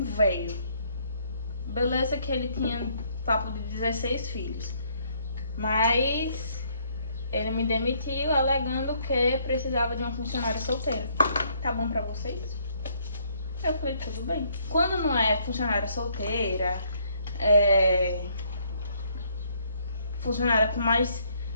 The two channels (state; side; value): inverted; both; correlation -0.68